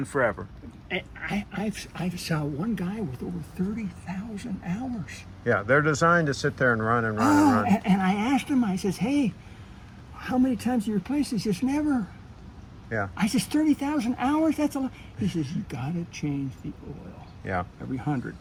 forever. I saw one guy with over 30,000 hours. Yeah, they're designed to sit there and run and run and run. And I asked him, I says, hey, how many times do you replace this? He says, never. Yeah. I says, 30,000 hours? That's a lot. He says, you got to change the oil. Yeah. Every 100.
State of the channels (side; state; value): both; identical; correlation 1.00